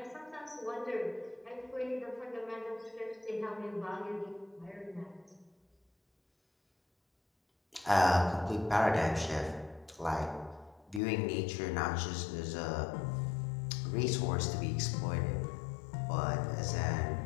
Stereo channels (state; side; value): drops out; right; at 11.0 s